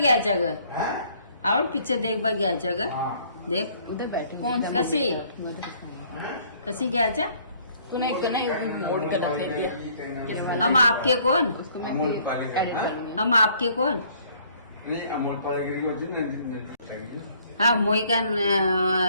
जगह और पिक्चर देख बा घ्यायचं ग देख उधर बैठे कौन सी? कशी कशी घ्यायचं तूने एक ना मोड़ कर रख दिया हम आपके कौन उसको मैं फिर edit करूंगी। हम आपके कौन नहीं अमोल पालेगिरी को जिन हाँ मोई का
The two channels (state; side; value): inverted; both; correlation -0.61